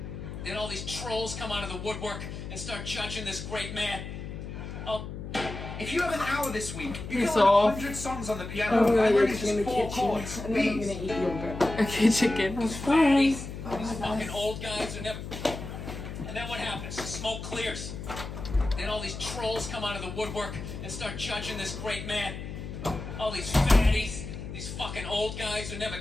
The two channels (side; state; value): left; noise; hum, 8 dB below the sound